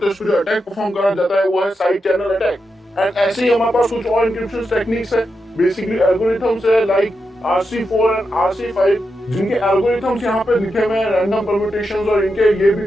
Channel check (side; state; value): both; normal; correlation 0.87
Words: इसको जो अटैक परफॉर्म करा जाता है वो है साइड चैनल अटैक। एंड ऐसे ही हमारे पास कुछ और एन्क्रिप्शन टेक्निक्स है, बेसिकली एल्गोरिथम्स है लाइक RC4 एंड RC5 जिनके एल्गोरिथम्स यहाँ पे लिखे हुए हैं रैंडम परम्यूटेशंस और इनके ये भी